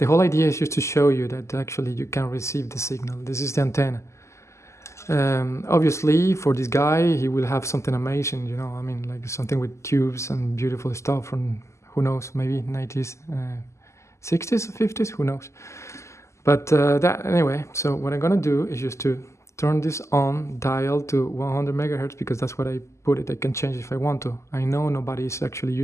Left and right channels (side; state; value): right; late; 0.13 ms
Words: whole idea is just to show you that actually you can receive the signal. This is the antenna. Obviously, for this guy, he will have something amazing, like something with tubes and beautiful stuff from, who knows, maybe 90s, 60s, 50s, who knows. But anyway, so what I'm gonna do is just to turn this on, dial to 100 megahertz, because that's what I put it. I can change if I want to. I know nobody is actually